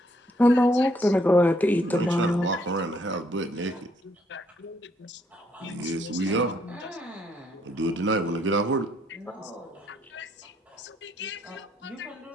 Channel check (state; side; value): normal; both; correlation 0.71